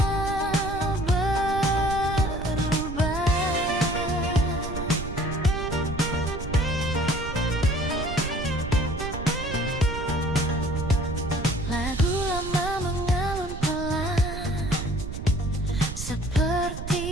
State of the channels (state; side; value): noise; right; rumble, 8 dB below the sound